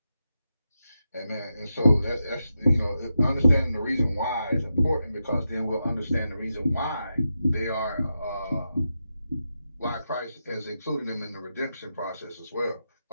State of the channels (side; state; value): both; inverted; correlation -0.88